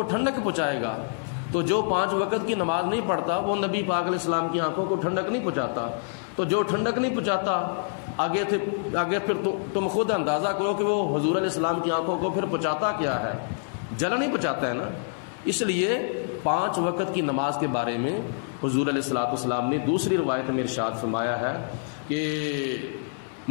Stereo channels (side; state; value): right; silent; digital silence